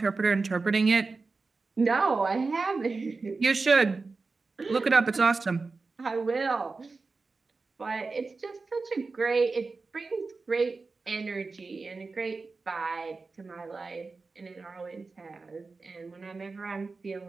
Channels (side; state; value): left; quieter; 4.0 dB